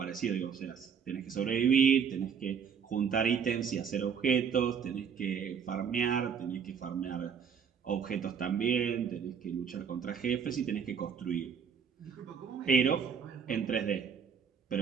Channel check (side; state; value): left; quieter; 7.0 dB